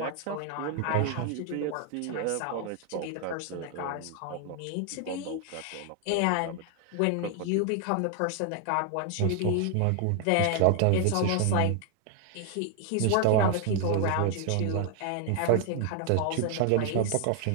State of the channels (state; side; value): different; both; correlation 0.01